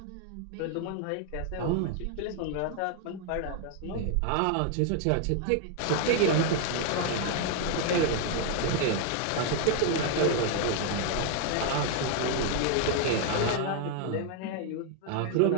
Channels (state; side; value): different; both; correlation 0.00